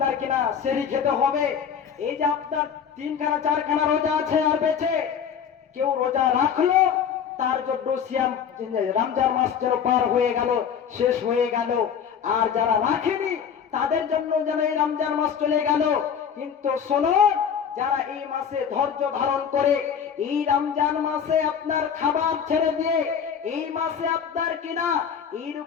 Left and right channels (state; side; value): quieter; right; 7.6 dB